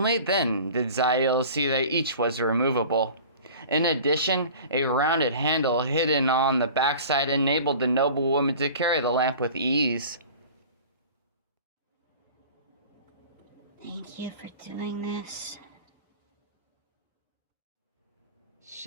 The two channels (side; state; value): both; inverted; correlation -0.41